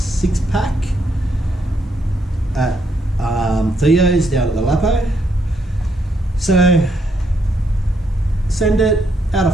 at Theo's down at the Lapo. So send it out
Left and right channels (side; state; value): both; normal; correlation 0.75